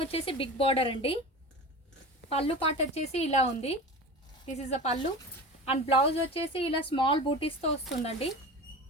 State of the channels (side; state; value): both; normal; correlation 0.32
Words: వచ్చేసి బిగ్ బార్డర్ అండి. పళ్ళు పాట వచ్చేసి ఇలా ఉంది. దిస్ ఇస్ అ పళ్ళు అండ్ బ్లౌజ్ వచ్చేసి ఇలా స్మాల్ బూటీస్తో వస్తుందండి.